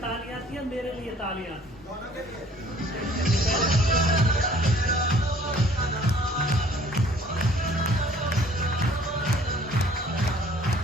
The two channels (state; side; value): normal; both; correlation 0.55